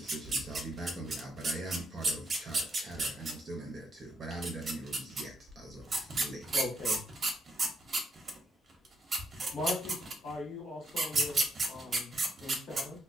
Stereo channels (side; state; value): both; normal; correlation 0.75